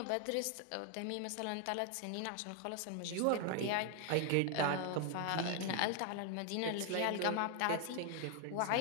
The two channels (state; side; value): different; both; correlation 0.00